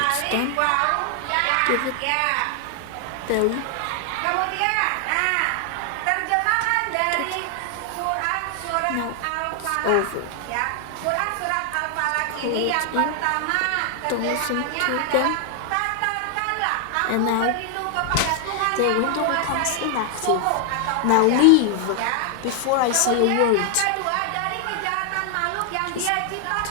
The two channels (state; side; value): different; both; correlation 0.00